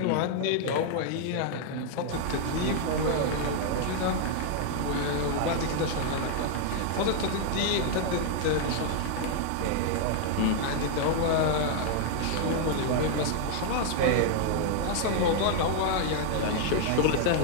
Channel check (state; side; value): different; both; correlation 0.00